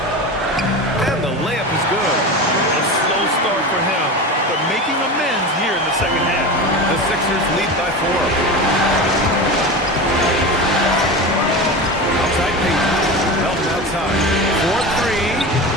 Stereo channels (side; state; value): both; normal; correlation 0.26